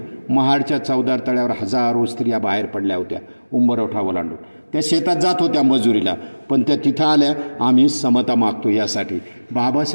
महाडच्या चौदार तळ्यावर हजारो स्त्रिया बाहेर पडल्या होत्या, उंबरवठा ओलांडून. त्या शेतात जात होत्या मजुरीला, पण त्या तिथं आल्या, आम्ही समता मागतो यासाठी.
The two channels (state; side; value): inverted; both; correlation -1.00